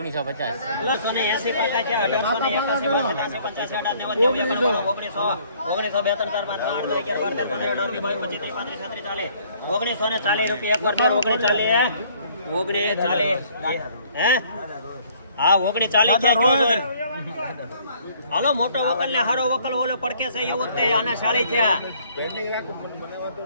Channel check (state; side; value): inverted; both; correlation -0.60